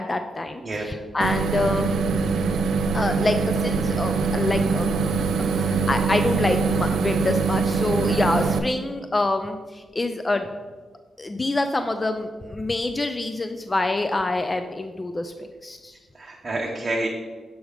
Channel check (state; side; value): normal; both; correlation 0.80